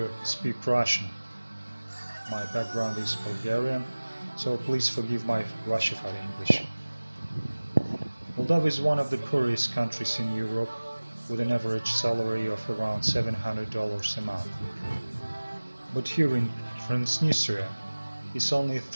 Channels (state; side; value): inverted; both; correlation -1.00